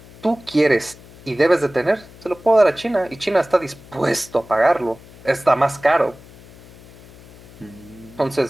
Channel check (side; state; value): left; noise; hum, 22 dB below the sound